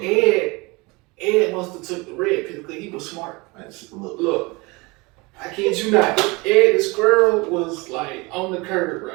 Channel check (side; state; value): left; quieter; 25.3 dB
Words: Ed must have took the red pill because he was smart. Look, I kid you not. Ed the squirrel was like on the curb,